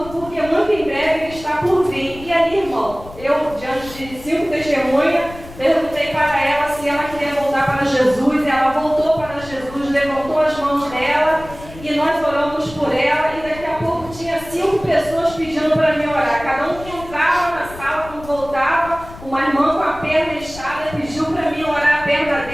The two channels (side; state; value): left; noise; rumble, 16 dB below the sound